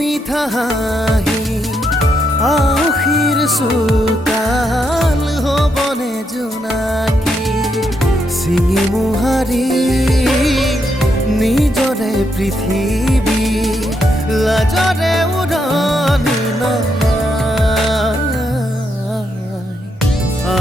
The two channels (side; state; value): both; normal; correlation 0.79